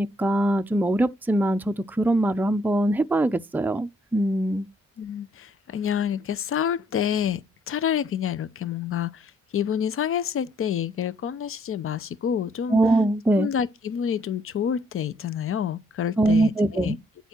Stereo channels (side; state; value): both; normal; correlation 0.67